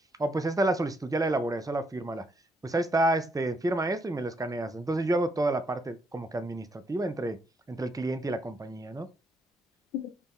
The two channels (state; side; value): normal; both; correlation 0.75